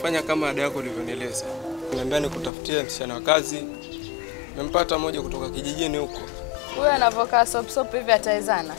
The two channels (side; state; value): right; drops out; at 2.5 s